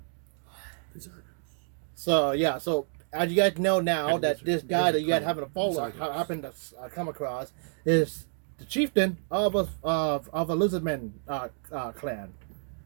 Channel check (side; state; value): left; silent; 59 dB below the other